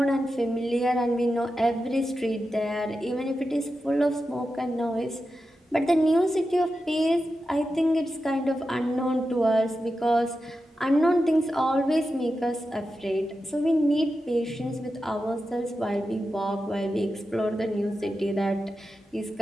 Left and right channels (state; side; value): normal; both; correlation 0.91